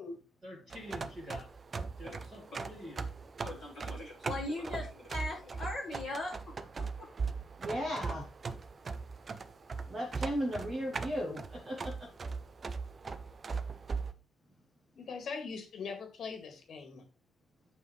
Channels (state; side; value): normal; both; correlation 0.84